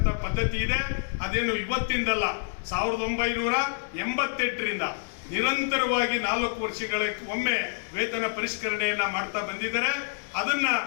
ಪದ್ಧತಿ ಇದೆ, ಅದೇನು ಇವತ್ತಿಂದಲ್ಲ, 1988ರಿಂದ ನಿರಂತರವಾಗಿ 4 ವರ್ಷಗಳ ಒಮ್ಮೆ ವೇತನ ಪರಿಷ್ಕರಣೆಯನ್ನ ಮಾಡ್ತಾ ಬಂದಿದ್ದಾರೆ. ಅದನ್ನ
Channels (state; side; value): silent; right; digital silence